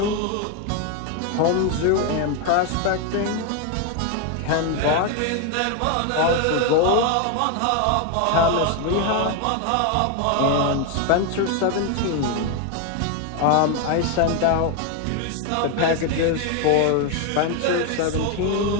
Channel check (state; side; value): different; both; correlation 0.01